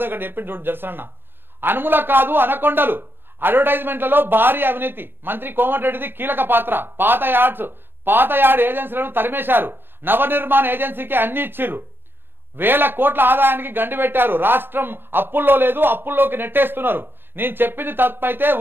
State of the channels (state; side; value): late; left; 0.10 ms